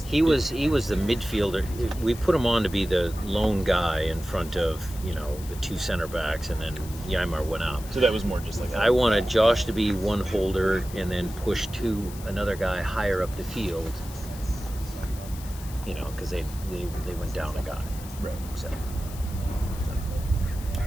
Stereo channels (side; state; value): left; noise; hiss, 16 dB below the sound